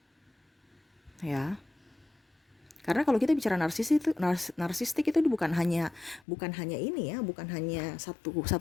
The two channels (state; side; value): drops out; right; at 6.2 s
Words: Ya. Karena kalau kita bicara narsistik itu bukan hanya ini ya, bukan hanya satu